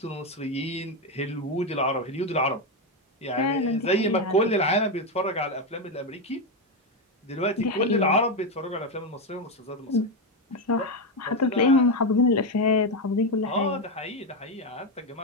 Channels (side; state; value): both; normal; correlation 0.09